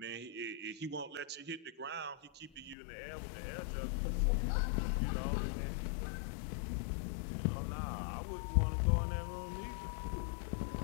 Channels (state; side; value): drops out; right; at 2.8 s